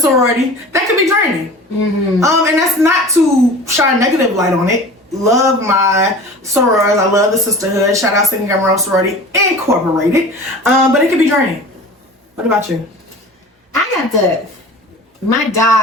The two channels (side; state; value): both; normal; correlation 0.39